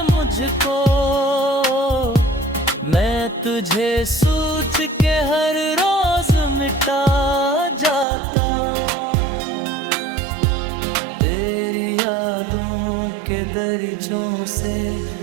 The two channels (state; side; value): drops out; left; at 8.1 s